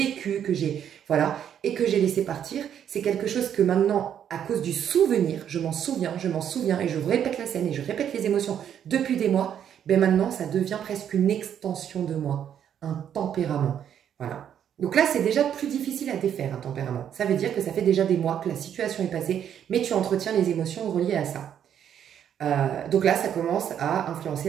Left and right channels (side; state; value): left; quieter; 9.3 dB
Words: que j'ai... Voilà, et que j'ai laissé partir. C'est quelque chose que maintenant, à cause du souvenir, je m'en souviens, et je répète la scène et je répète les émotions depuis des mois, ben maintenant, ça devient presque une extension de moi, un tempérament. Voilà. Donc là, c'est déjà plus difficile à défaire, un tempérament. Ça veut dire que ça fait déjà des mois que la situation est passée, mais tu entretiens les émotions reliées à ça. Donc là, ça commence à influencer